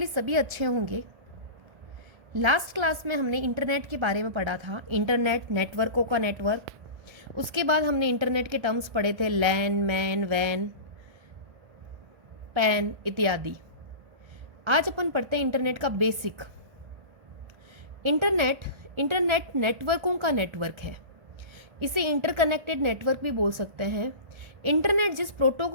सभी अच्छे होंगे। लास्ट क्लास में हमने इंटरनेट के बारे में पढ़ा था, इंटरनेट, नेटवर्कों का नेटवर्क। उसके बाद हमने इंटरनेट के टर्म्स पढ़े थे, लैन, मैन, वैन, पैन इत्यादि। आज अपन पढ़ते हैं इंटरनेट का बेसिक। इंटरनेट नेटवर्कों का नेटवर्क है। इसे इंटरकनेक्टेड नेटवर्क भी बोल सकते हैं। इंटरनेट जिस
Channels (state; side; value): late; left; 1.4 ms